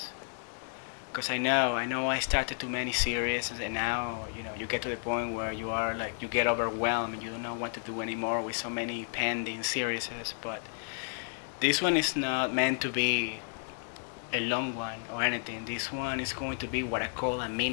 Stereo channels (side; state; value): right; silent; digital silence